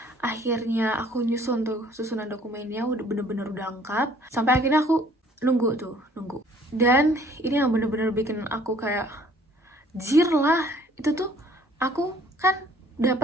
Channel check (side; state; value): both; normal; correlation 0.57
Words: akhirnya aku nyusun tuh susunan dokumennya, udah bener-bener udah lengkap. Sampai akhirnya aku nunggu. Dan ini yang bener-bener bikin aku kayak jir lah. Itu tuh aku kan